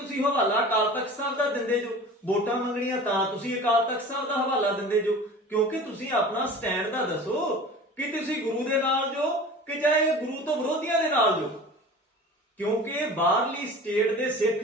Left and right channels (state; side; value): normal; both; correlation 0.39